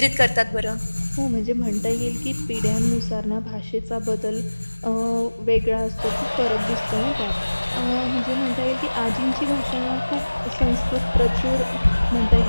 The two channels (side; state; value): both; inverted; correlation -1.00